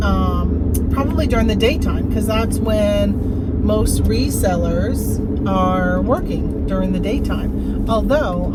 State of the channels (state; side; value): identical; both; correlation 1.00